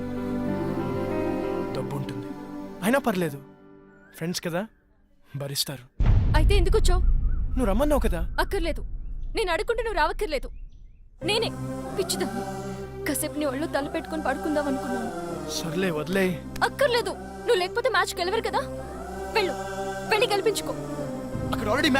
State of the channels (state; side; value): identical; both; correlation 1.00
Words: డబ్బు ఉంటుంది, అయినా పర్లేదు, ఫ్రెండ్స్ కదా, భరిస్తారు. అయితే ఎందుకు వచ్చావు? నువ్వు రమ్మన్నావు కదా. అక్కర్లేదు, నేను అడుగుంటే నువ్వు రావక్కర్లేదు. నేనే పిచ్చిదా కాసేపు నీ ఒళ్ళు తల పెట్టుకుని పడుకుందాం అనుకున్నాను. సర్లే వదిలే. అక్కర్లేదు, నువ్వు లేకపోతే మ్యాచ్ గెలవరు కదా. వెళ్ళు, వెళ్ళి గెలిపించుకో. అక్కడ ఆల్రెడీ